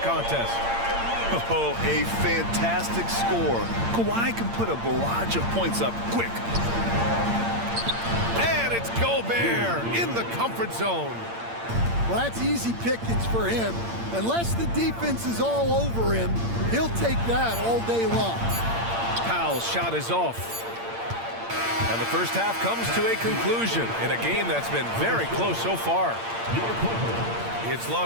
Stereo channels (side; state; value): left; late; 8.7 ms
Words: Oh, a fantastic score. Kawhi can put a barrage of points up quick. And it's Gobert in the comfort zone. Well, that's easy pickings for him. Unless the defense is all over him, he'll take that all day long. Powell's shot is off. And the first half comes to a conclusion in a game that's been very close so far. It's